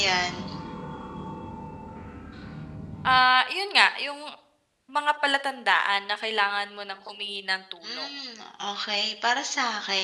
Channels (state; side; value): identical; both; correlation 1.00